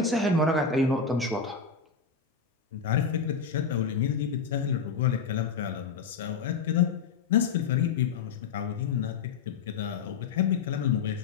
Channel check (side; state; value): right; quieter; 5.6 dB